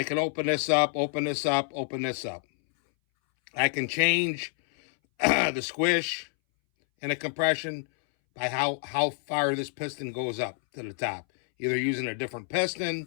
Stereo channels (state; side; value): silent; right; 59 dB below the other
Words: can open this up, open this up, open this up. I can change the squish and the compression by how far this piston goes up to the top. Either using a different